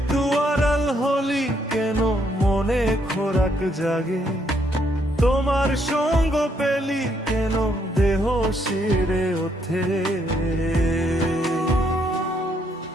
আড়াল হলি কেন মনে খোরাক জাগে, তোমার সঙ্গ পেলি কেন দেহ শিরে ওঠে।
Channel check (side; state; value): both; normal; correlation 0.72